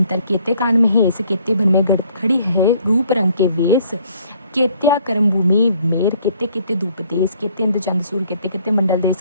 केते कान महेश केते भन में खड़ी है रूप रंग के वेश केत्या कर्म भूमि मेर केते केते धूप देश केते इंद्र चंद सूर केते केते मंडल देश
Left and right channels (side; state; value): both; inverted; correlation -0.62